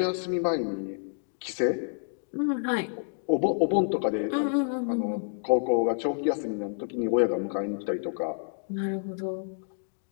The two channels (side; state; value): right; silent; digital silence